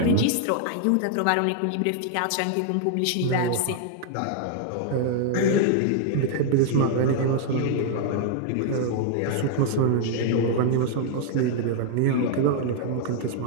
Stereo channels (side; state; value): both; different; correlation 0.00